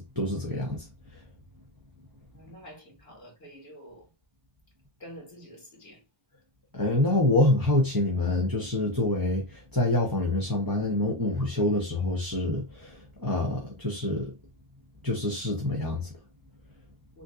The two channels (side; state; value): left; late; 1.0 ms